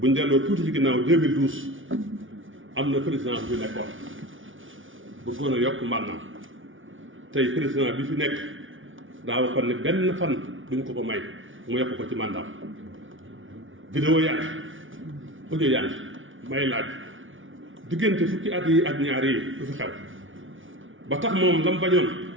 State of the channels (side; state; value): left; late; 0.57 ms